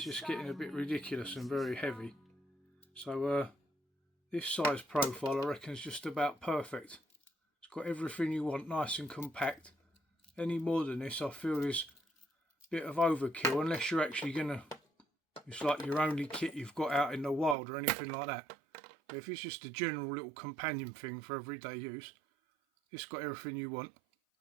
just getting a bit ridiculous and very heavy. So this size profile I reckon is just about perfect. It's got everything you want, nice and compact. Any more than this I feel is a bit of overkill, unless you're actually gonna, it's like your only kit you've got out in the wild or anything like that. But if it's just a general little companion thing for everyday use, it's got everything you want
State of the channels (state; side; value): drops out; left; at 17.6 s